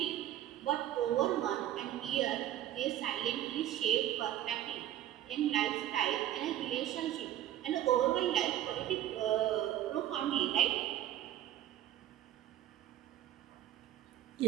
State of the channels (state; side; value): quieter; left; 12.4 dB